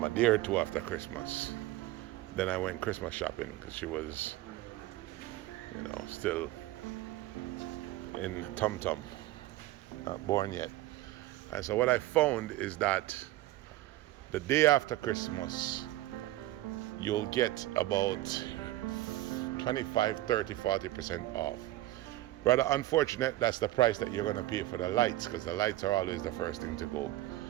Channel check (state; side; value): quieter; left; 16.4 dB